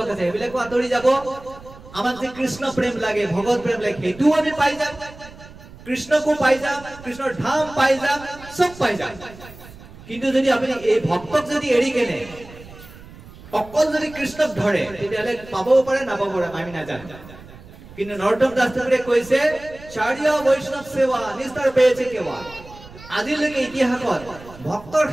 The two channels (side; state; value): right; noise; rumble, 19 dB below the sound